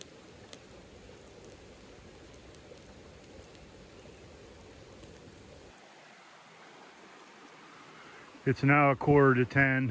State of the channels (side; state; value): both; identical; correlation 1.00